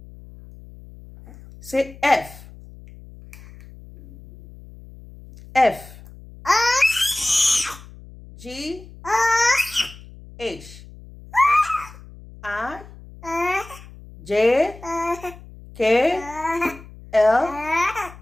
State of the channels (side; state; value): left; noise; hum, 19 dB below the sound